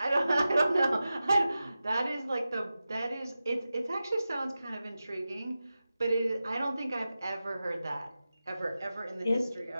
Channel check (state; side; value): inverted; both; correlation -0.93